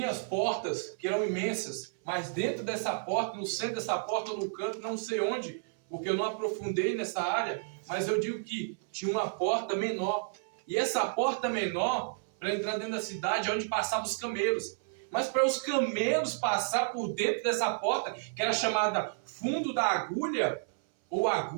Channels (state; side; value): silent; left; 57 dB below the other